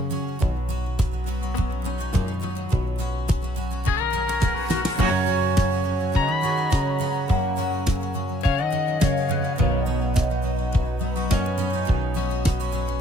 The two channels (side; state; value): both; normal; correlation 0.65